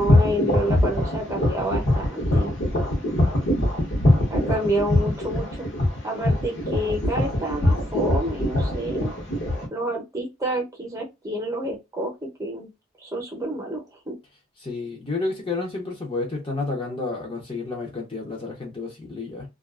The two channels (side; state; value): both; normal; correlation 0.74